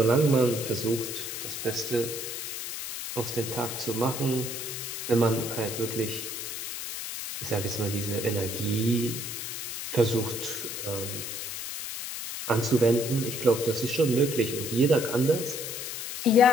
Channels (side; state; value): left; noise; hiss, 6 dB below the sound